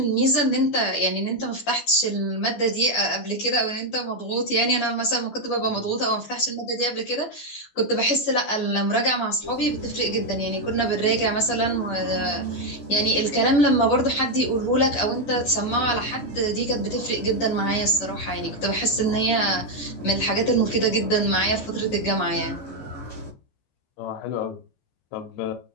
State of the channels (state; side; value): late; right; 14 ms